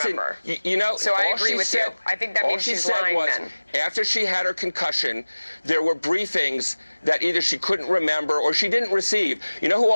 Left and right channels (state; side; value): inverted; both; correlation -1.00